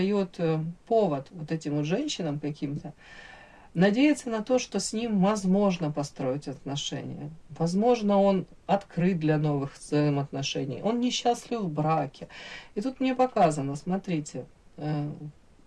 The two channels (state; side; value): identical; both; correlation 1.00